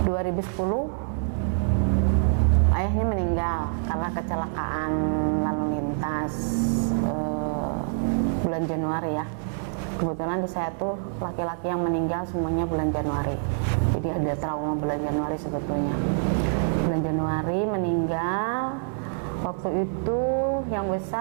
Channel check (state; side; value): silent; left; 61 dB below the other